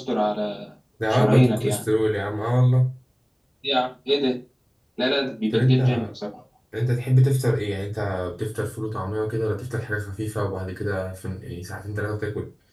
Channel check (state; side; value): identical; both; correlation 1.00